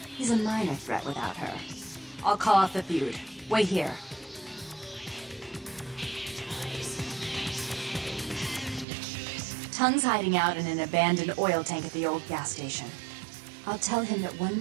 He's a minor threat without her. I'll call off the feud. Wait here. Tongue's hiding out in an abandoned oil tank at the old gas station. I'll tell him that one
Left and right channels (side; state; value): left; drops out; at 8.8 s